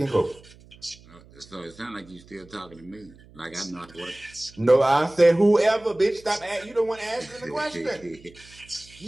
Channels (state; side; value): noise; right; hum, 24 dB below the sound